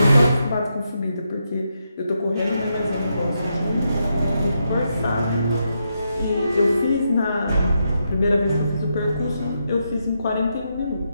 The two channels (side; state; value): both; inverted; correlation -0.82